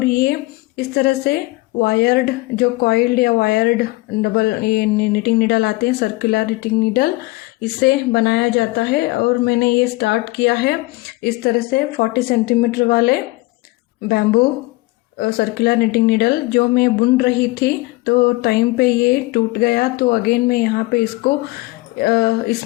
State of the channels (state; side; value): quieter; right; 21.7 dB